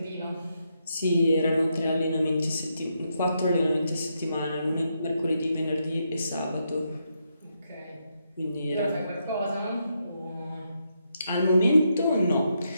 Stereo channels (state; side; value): inverted; both; correlation -0.81